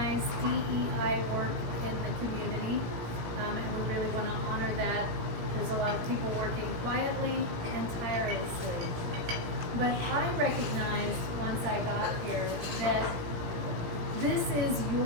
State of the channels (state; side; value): late; left; 17 ms